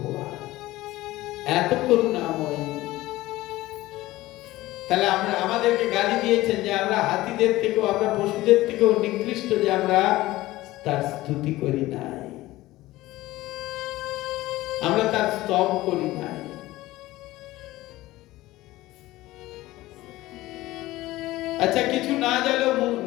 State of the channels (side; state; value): right; quieter; 17.5 dB